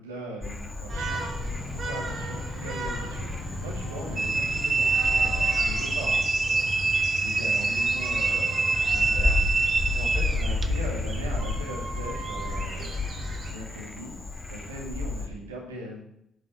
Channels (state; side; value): normal; both; correlation 0.84